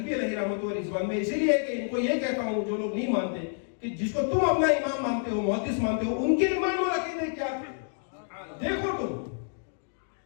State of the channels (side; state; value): right; silent; digital silence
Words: علیہ رحمۃ و رضوان میں اسی لیے کہ ان کو یہ کہتا ہوں جو لوگ نہیں مانتے کہ جس کو تم اپنا امام مانتے ہو، محدث مانتے ہو، ان کے ایمان اور عقیدے کیا تھے دیکھو تم،